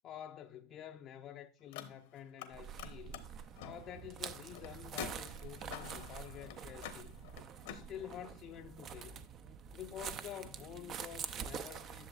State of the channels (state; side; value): normal; both; correlation 0.35